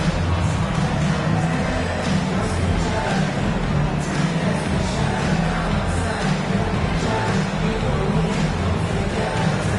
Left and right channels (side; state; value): both; identical; correlation 1.00